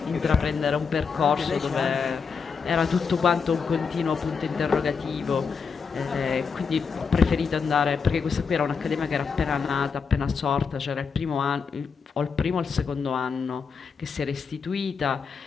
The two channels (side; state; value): right; quieter; 5.6 dB